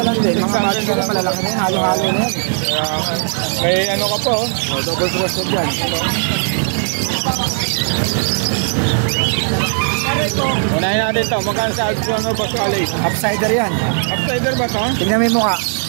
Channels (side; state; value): left; silent; digital silence